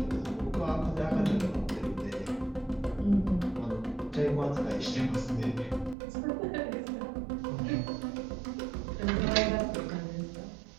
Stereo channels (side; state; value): left; drops out; at 6.0 s